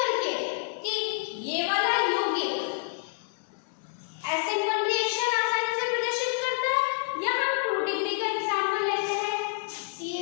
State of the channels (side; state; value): right; silent; digital silence